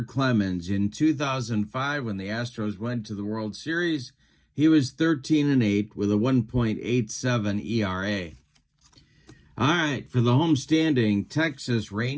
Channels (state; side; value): identical; both; correlation 1.00